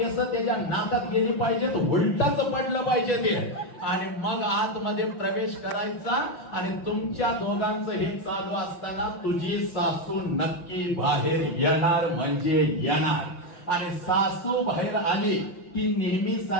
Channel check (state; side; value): late; right; 5.7 ms